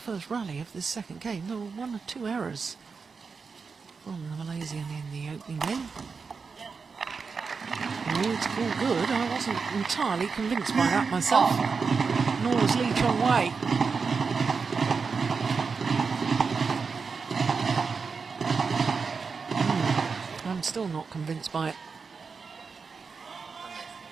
rally of this second game, there were 1 or 2 errors from the Malaysian in the opening game. Oh, it's all good. I wasn't entirely convinced by that myself. Nor was Lee Chong Wei. I'm still not convinced by it.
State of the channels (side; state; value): left; quieter; 5.1 dB